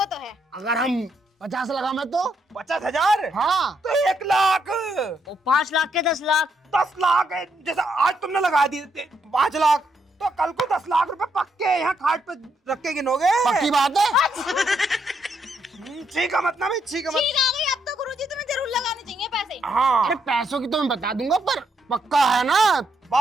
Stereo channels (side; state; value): both; normal; correlation 0.77